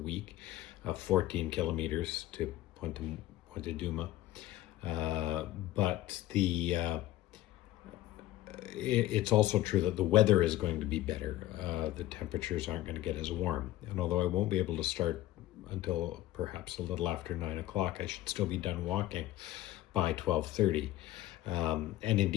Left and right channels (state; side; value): quieter; right; 15.3 dB